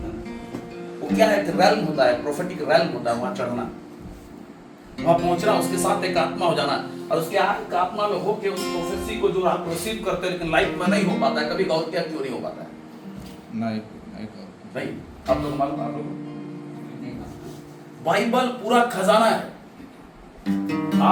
वो क्या है, रैल्म होता है, प्रोफेटिक रैल्म होता है, वहां चढ़ना, वहां पहुंचना, उसके साथ एक आत्मा हो जाना, और उसके एक आत्मा में होके उस प्रोफेसी को जो आप रिसीव करते हैं, लेकिन लाइफ में नहीं हो पाता है। कभी गौर किया क्यों नहीं हो पाता है? नहीं आप लोग मालूम, आप लोग बाइबल पूरा खजाना है।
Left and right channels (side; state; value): both; identical; correlation 1.00